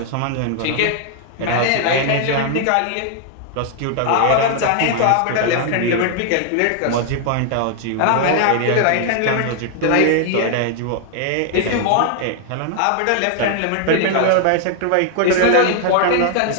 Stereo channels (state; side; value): different; both; correlation 0.00